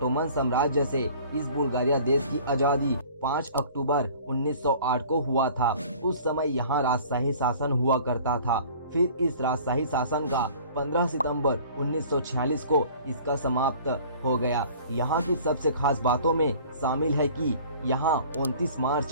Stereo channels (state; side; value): inverted; both; correlation -0.49